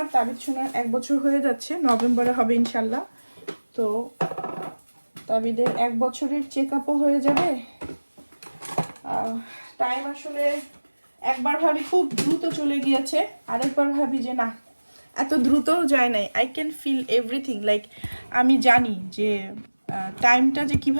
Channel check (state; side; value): inverted; both; correlation -1.00